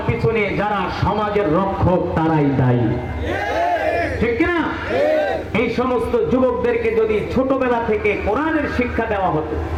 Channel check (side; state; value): both; identical; correlation 1.00